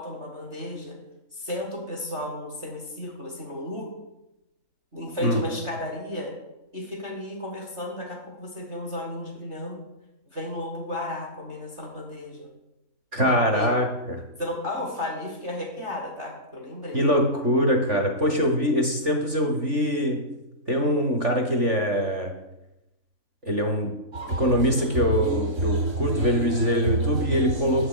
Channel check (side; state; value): left; late; 3.5 ms